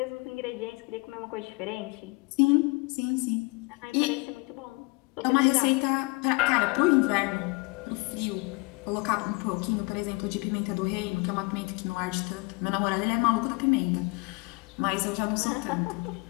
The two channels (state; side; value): quieter; right; 28.4 dB